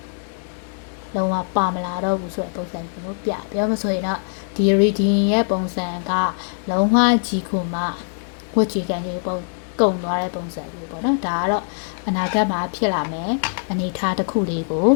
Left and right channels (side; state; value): right; silent; digital silence